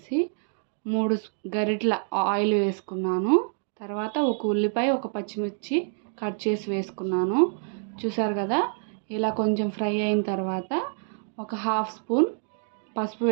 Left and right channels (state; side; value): silent; left; digital silence